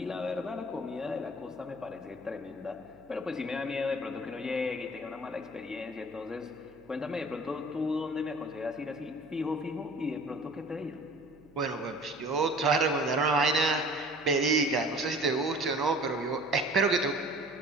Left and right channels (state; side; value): noise; right; hum, 28 dB below the sound